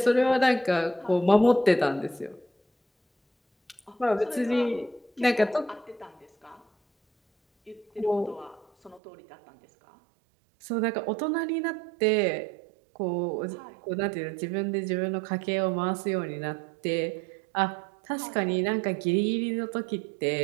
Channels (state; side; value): drops out; left; at 9.0 s